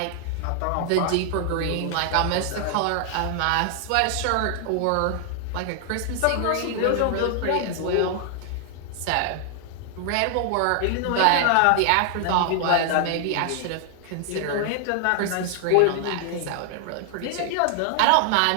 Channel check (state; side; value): different; both; correlation 0.00